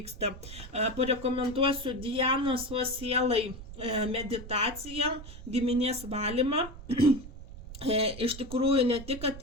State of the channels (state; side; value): noise; right; rumble, 13 dB below the sound